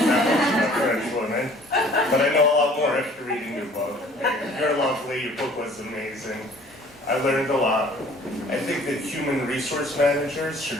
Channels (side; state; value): both; normal; correlation 0.53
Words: French woman, but I know a lot more after reading your book. You're lovely, your book was amazing. I learned a lot. I think that human resource managers